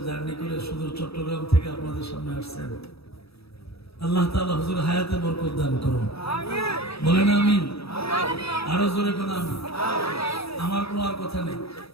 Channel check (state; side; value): late; right; 0.77 ms